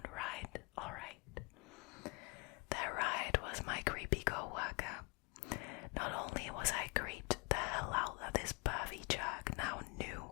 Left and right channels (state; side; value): quieter; right; 30.6 dB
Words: ride. Alright. Their ride was my creepy co-worker. Not only was I creeped the hell out that this pervy jerk now knew